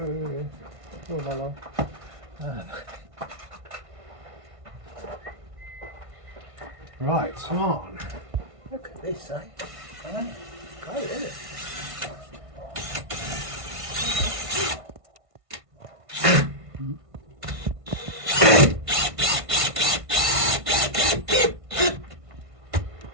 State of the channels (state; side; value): late; left; 1.5 ms